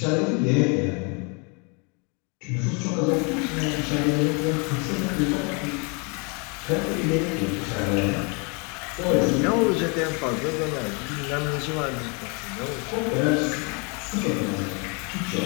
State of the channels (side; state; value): right; quieter; 33.4 dB